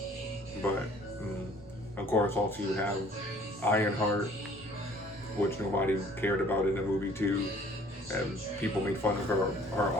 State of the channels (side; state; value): both; normal; correlation 0.54